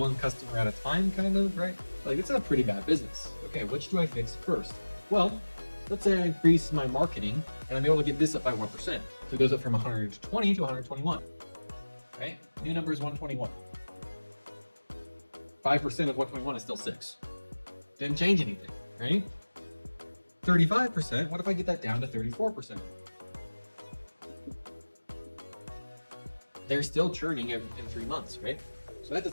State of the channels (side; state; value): both; inverted; correlation -1.00